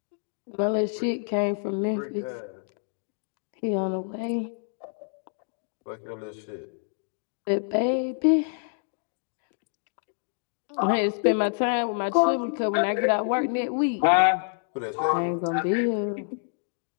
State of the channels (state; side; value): silent; right; digital silence